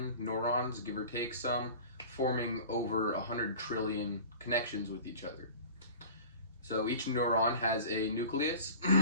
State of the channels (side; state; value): both; inverted; correlation -0.40